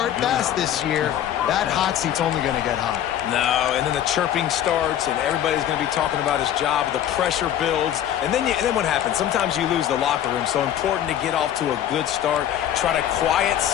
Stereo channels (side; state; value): right; quieter; 10.8 dB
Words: fast this year, that hot seat's only going to get hot. No, and then the chirping starts, and everybody's going to be talking about his job. The pressure builds, and then what happens? Sometimes you lose the locker room, so important to get off to a good start. Try to quiet